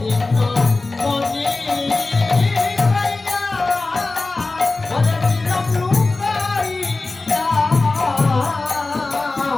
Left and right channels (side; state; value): right; quieter; 3.4 dB